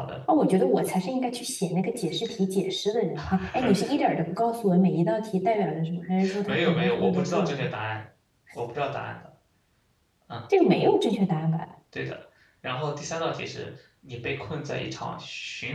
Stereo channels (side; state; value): both; identical; correlation 1.00